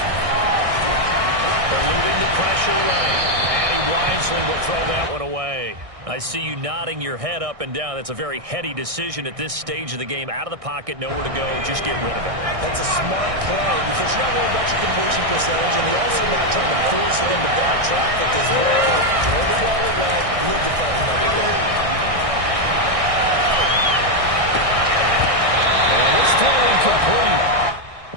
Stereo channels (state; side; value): late; left; 1.6 ms